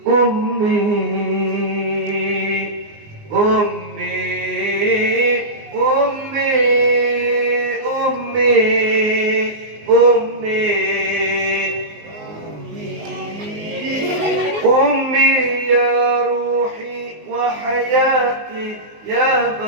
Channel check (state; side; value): late; left; 19 ms